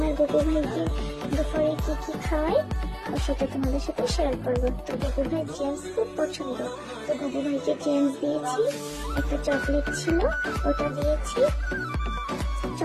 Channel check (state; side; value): identical; both; correlation 1.00